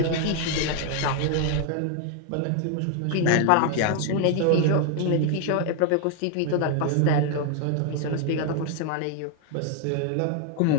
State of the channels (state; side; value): different; both; correlation 0.00